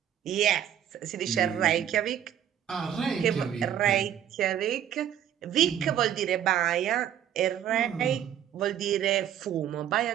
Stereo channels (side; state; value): left; quieter; 10.2 dB